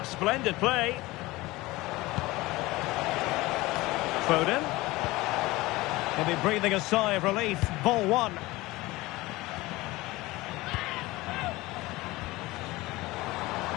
splendid play. Foden. He'll be breathing a sigh of relief. Ball one.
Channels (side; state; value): right; quieter; 20.1 dB